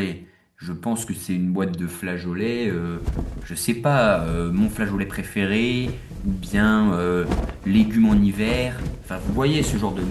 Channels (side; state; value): both; identical; correlation 1.00